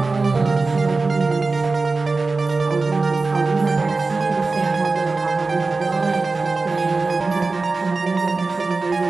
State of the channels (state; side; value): quieter; left; 3.8 dB